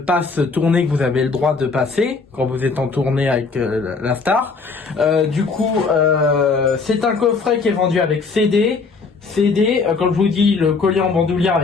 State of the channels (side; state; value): right; quieter; 4.5 dB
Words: tournée que vous avez le droit de passer quand vous êtes en tournée avec la star. C'est un coffret qui est vendu avec CD, comme je vous dis, le collier en bandoulière